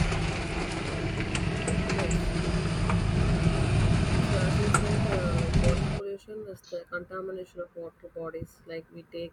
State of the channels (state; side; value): identical; both; correlation 1.00